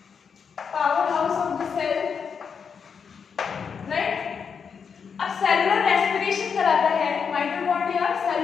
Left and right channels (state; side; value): quieter; right; 6.4 dB